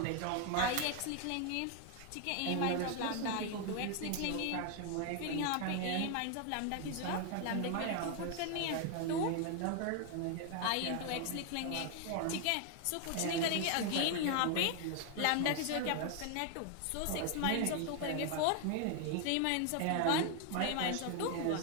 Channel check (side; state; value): both; different; correlation 0.01